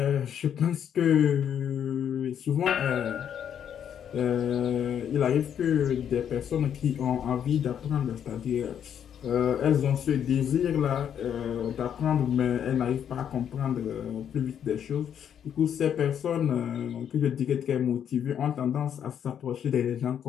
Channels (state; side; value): quieter; right; 8.9 dB